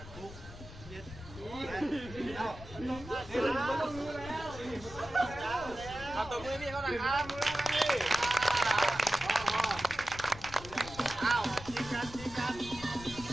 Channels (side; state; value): left; noise; rumble, 14 dB below the sound